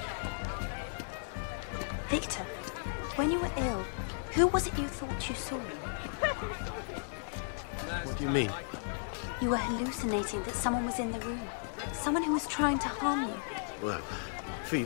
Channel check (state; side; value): silent; right; digital silence